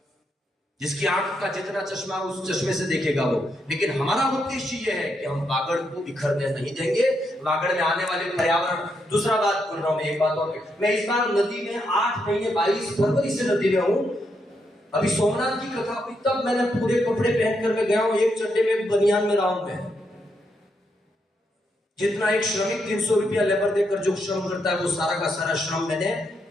जिसकी आंख का जितना चश्मा उस चश्मे से देखेगा वो। लेकिन हमारा उद्देश्य ये है कि हम वागड़ को बिखरने नहीं देंगे। वागड़ में आने वाले पर्यावरण। दूसरा बात बोल रहा हूं मैं, एक बात और। मैं इस बार नदी में 8 महीने 22 फरवरी से नदी में हूं। अभी सोमनाथ की कथा हुई तब मैंने पूरे कपड़े पहनकर मैं गया हूं। एक चड्डे में, बनियान में रहा हूं मैं। जितना एक श्रमिक 300 रुपया लेबर देकर जो श्रम करता है, वो सारा का सारा श्रम मैंने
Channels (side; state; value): both; normal; correlation 0.80